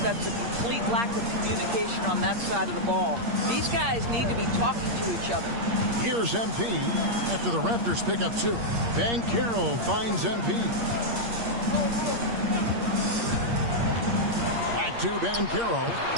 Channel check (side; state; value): left; late; 8.6 ms